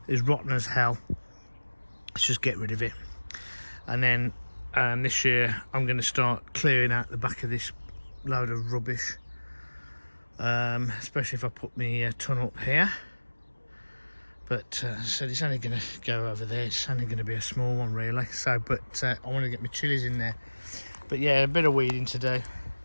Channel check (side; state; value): both; inverted; correlation -1.00